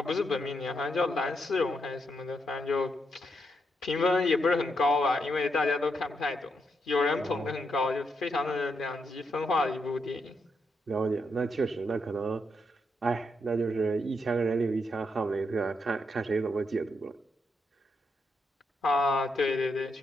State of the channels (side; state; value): both; normal; correlation 0.80